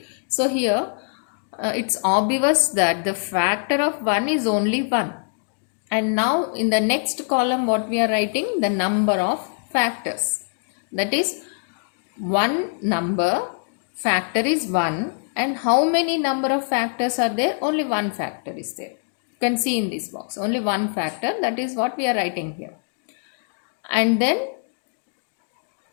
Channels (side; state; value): right; silent; 63 dB below the other